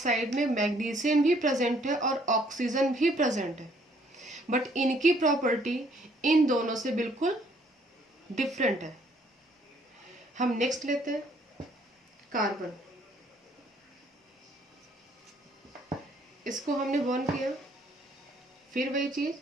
में मैग्नीशियम भी प्रेजेंट है और ऑक्सीजन भी प्रेजेंट है, बट इनकी प्रॉपर्टी इन दोनों से बिल्कुल डिफरेंट है। हम नेक्स्ट लेते हैं कार्बन। इसको हमने बर्न किया, फिर वही चीज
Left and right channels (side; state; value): both; normal; correlation 0.64